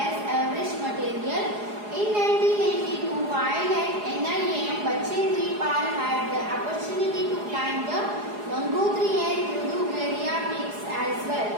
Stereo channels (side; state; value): left; late; 4.8 ms